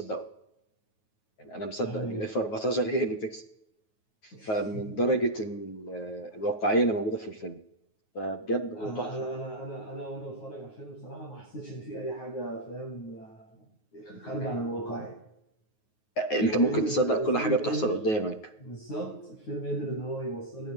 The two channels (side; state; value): right; late; 9.4 ms